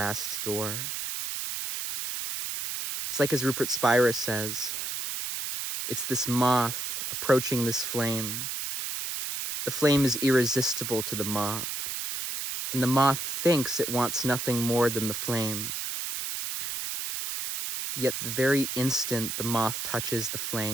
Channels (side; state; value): right; noise; hiss, 4 dB below the sound